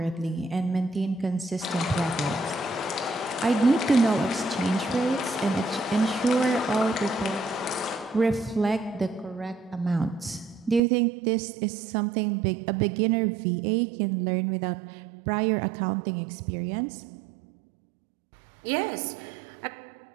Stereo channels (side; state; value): left; drops out; at 10.8 s